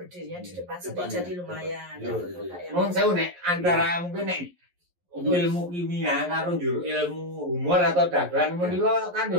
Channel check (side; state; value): left; late; 11 ms